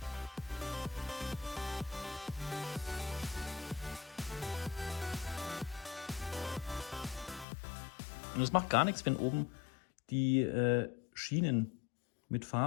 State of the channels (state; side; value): drops out; right; at 7.5 s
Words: Und es macht gar nichts, wenn oben die Schienen mit